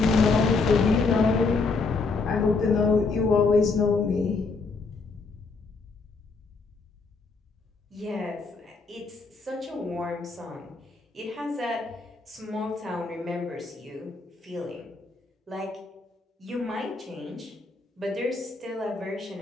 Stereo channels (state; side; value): quieter; right; 4.1 dB